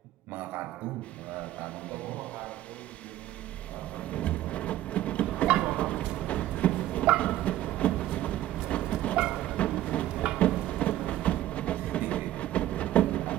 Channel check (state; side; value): quieter; left; 14.0 dB